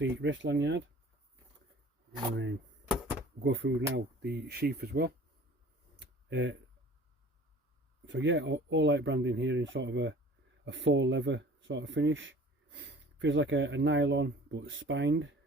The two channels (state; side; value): normal; both; correlation 0.47